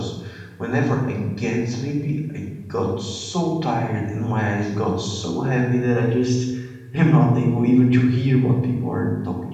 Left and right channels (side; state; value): both; identical; correlation 1.00